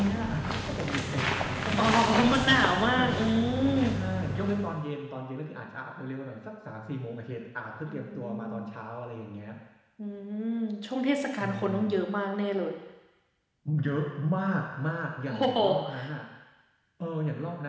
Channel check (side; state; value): both; identical; correlation 1.00